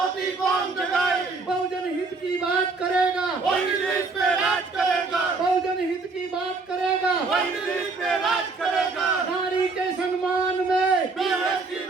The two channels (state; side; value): quieter; left; 4.0 dB